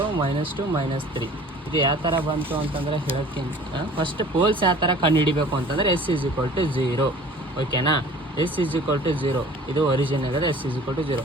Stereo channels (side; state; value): both; normal; correlation 0.47